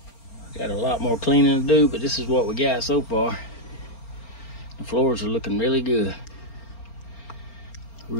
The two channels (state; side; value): late; right; 4.4 ms